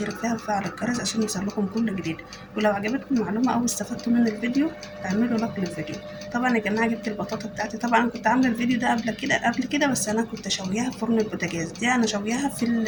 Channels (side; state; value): both; identical; correlation 1.00